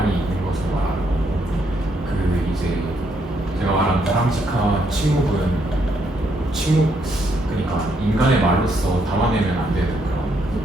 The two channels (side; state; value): both; normal; correlation 0.74